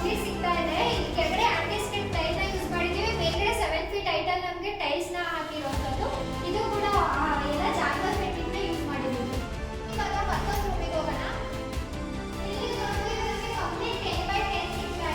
ಸಿಗ್ತಾ ಇದೆ. ಇಲ್ಲಿ ಕೆಳಗಡೆ ಆಂಟಿ ಸ್ಕಿಡ್ ಟೈಲ್ ನ ಯೂಸ್ ಮಾಡಿದ್ದೀವಿ. ಮೇಲ್ಗಡೆ 7 ಫೀಟ್ ಹೈಟ್ ಅಲ್ಲಿ ನಮಗೆ ಟೈಲ್ಸ್ ನ ಹಾಕಿರುವಂತದ್ದು. ಇದು ಕೂಡ ಎಲ್ಲ ಜಾಗ್ವರ್ ಫಿಟ್ಟಿಂಗ್ ನ ಯೂಸ್ ಮಾಡಿದ್ದೀವಿ. ಇವಾಗ ಮತ್ತೊಂದು ರೂಮಿಗೆ ಹೋಗೋಣ. ಇಲ್ಲಿ ನೋಡಿದ್ರೆ ನಮಗೆ ಕಂಪ್ಲೀಟ್ 10x10 ಸಿಗ್ತಾ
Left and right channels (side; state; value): both; identical; correlation 1.00